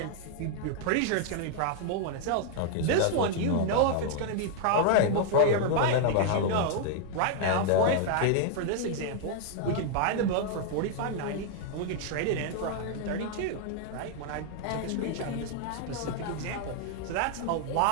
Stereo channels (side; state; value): both; different; correlation 0.00